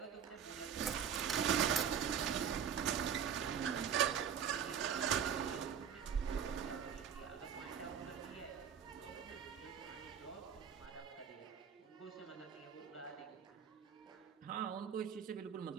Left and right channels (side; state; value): left; quieter; 8.0 dB